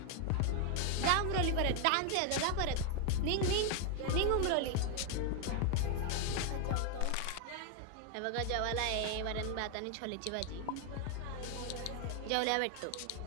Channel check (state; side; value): different; both; correlation 0.00